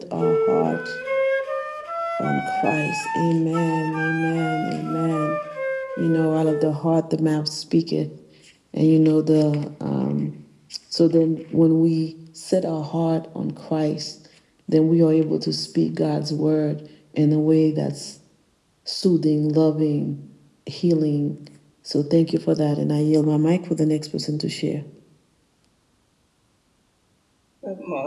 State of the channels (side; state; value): both; identical; correlation 1.00